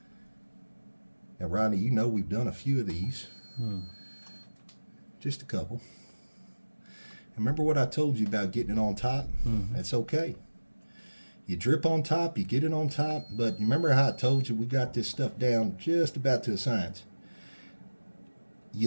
Now, Rodney, you know we've done a few of these. Just a couple. Remember what I told you about getting it on top? That's okay. You drip on top, you get it on top, but remember how I told you we got this stuff down just about to a science.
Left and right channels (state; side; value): inverted; both; correlation -1.00